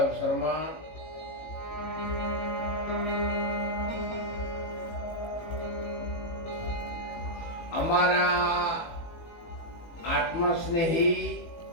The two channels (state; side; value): late; right; 19 ms